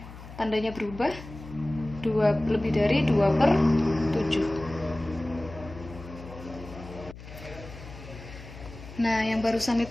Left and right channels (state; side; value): noise; left; hum, 15 dB below the sound